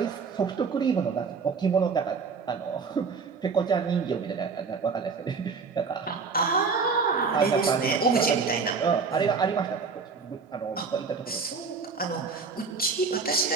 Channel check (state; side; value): quieter; left; 5.0 dB